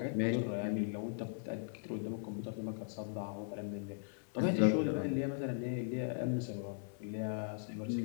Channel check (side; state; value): right; silent; digital silence